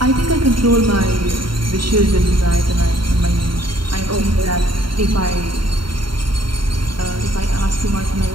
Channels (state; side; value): late; left; 0.73 ms